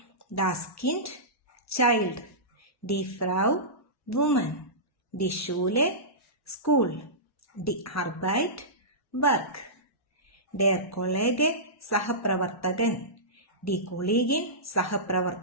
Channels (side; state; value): both; normal; correlation -0.19